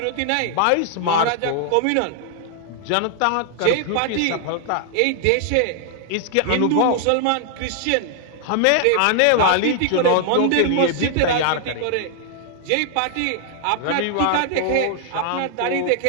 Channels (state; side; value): different; both; correlation 0.00